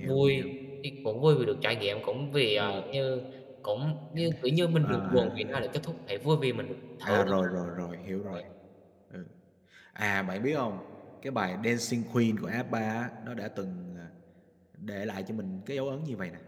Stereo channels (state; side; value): identical; both; correlation 1.00